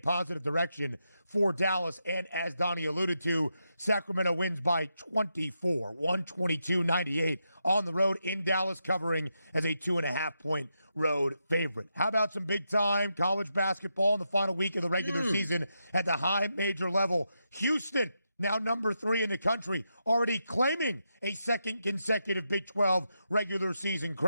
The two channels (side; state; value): both; inverted; correlation -0.84